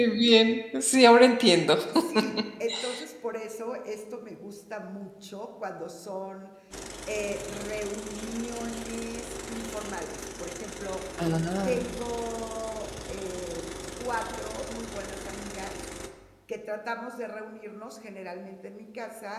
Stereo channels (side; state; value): both; identical; correlation 1.00